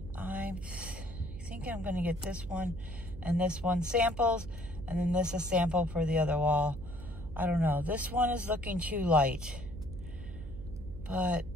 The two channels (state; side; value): noise; right; hum, 12 dB below the sound